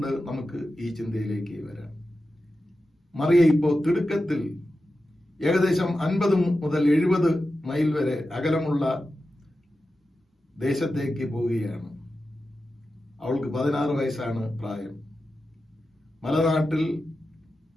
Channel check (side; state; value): both; normal; correlation 0.92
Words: നമുക്ക് ഈ ചിന്തയിലേക്ക് വരാം. മറിയ ഇപ്പോൾ തിടുക്കത്തിൽ ഏകദേശം 50 മുതൽ 70 മൈൽ വരെ അകലമുള്ള ദേശത്തേക്ക് പോവുകയാണ്. അവൾക്ക് 16 വയസ്സാണ് പ്രായം. മലനാട്ടിൽ